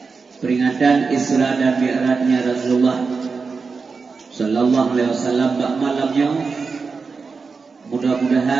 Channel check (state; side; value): quieter; left; 4.8 dB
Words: peringatan Isra dan Mi'rajnya Rasulullah sallallahu alaihi wasallam bak malamnya.